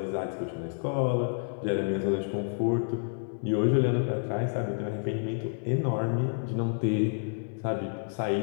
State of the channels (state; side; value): silent; right; digital silence